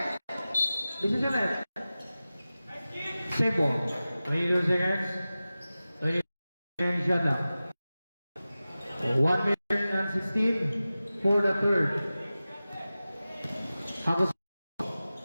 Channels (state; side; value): inverted; both; correlation -0.96